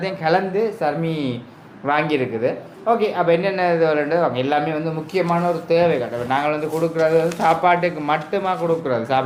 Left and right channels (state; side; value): identical; both; correlation 1.00